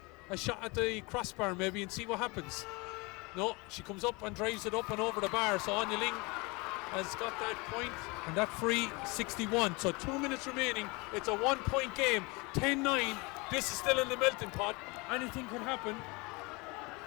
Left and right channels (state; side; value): quieter; right; 26.5 dB